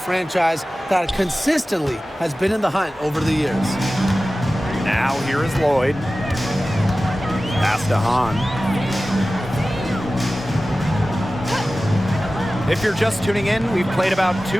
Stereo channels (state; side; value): normal; both; correlation 0.96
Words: that consistently has been in the hunt over the years. Now here is Lloyd. Pass to Hahn. If you're just tuning in, we've played about